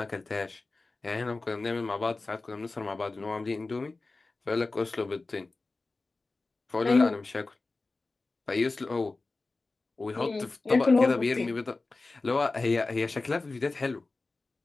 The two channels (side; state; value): right; quieter; 3.5 dB